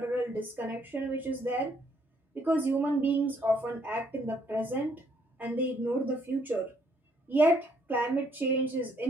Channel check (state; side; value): normal; both; correlation 0.69